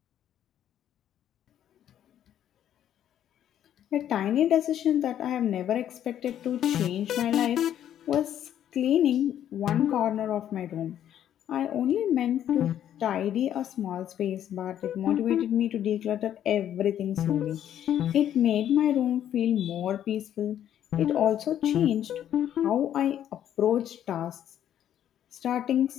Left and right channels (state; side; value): quieter; right; 10.6 dB